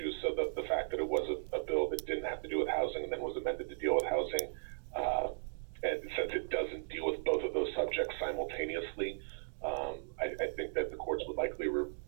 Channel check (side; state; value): left; silent; digital silence